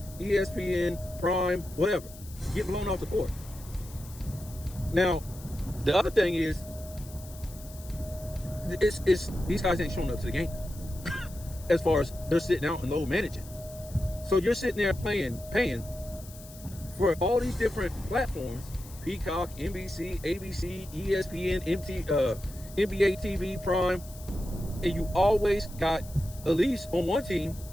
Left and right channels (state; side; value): noise; left; hiss, 19 dB below the sound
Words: ESPN, Prime, whatever. Get blown off the court. Now, the other thing is, it's these guys ain't showing up to the games. As far as they're sitting out and load managing. So you're sitting there paying for all these different platforms, Peacock, NBC, ABC, ESPN, NBA TV, Prime, and you always got, at least on one team,